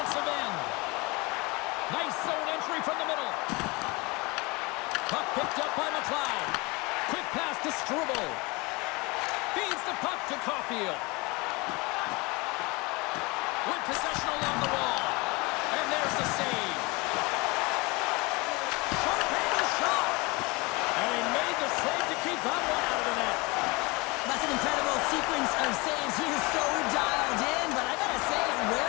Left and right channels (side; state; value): right; quieter; 25.7 dB